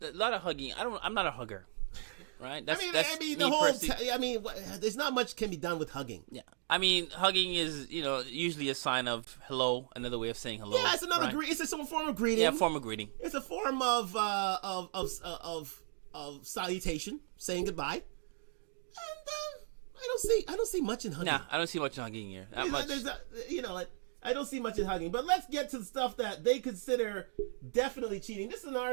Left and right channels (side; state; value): left; silent; digital silence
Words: a lot of hugging. I'm not a hugger. Right? That's the whole. There's not much can be done with hugging. Yeah, I mean, hugging is usually a sign of hello, another way of saying hello. Yeah, it's another right? It's a form of greeting. Yeah, form of greeting. It's a form of salutation, saying goodbye. And I don't see much in hugging. Nah, I don't see much in hugging here. Not much. I don't see much in hugging. But let's get to the stuff that they consider definitely cheating. This is an